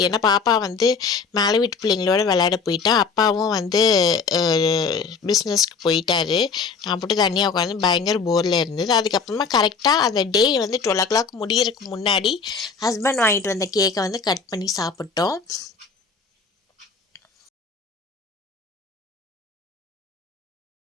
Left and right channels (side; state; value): right; quieter; 5.1 dB